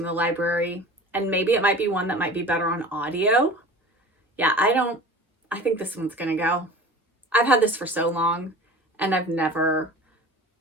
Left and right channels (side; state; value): both; normal; correlation 0.40